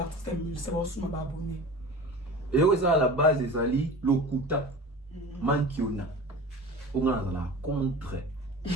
artiste musique, ça va aussi m'abonner. Et oui, ça à la base des ali lokuta mankiona. On a la contre.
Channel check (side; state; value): both; normal; correlation 0.36